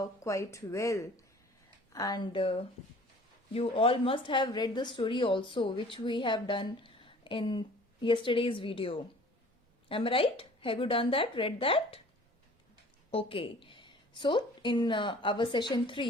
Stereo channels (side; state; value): both; normal; correlation 0.49